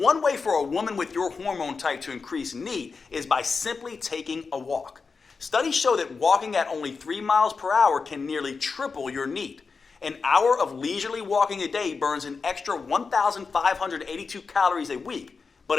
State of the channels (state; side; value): quieter; right; 4.8 dB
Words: way for a woman with your hormone type to increase NEAT is by simply taking a walk. Studies show that walking at only 3 miles per hour can nearly triple your NEAT. An hour of leisurely walking a day burns an extra 1,582 calories a week.